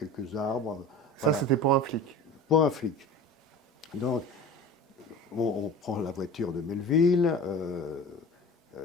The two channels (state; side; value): normal; both; correlation 0.37